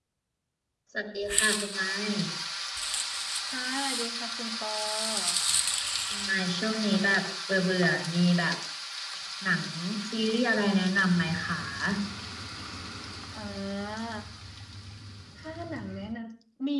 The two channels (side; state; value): both; identical; correlation 1.00